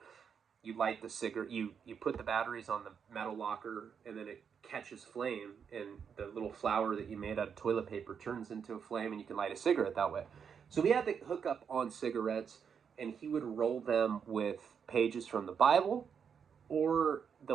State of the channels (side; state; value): left; quieter; 7.0 dB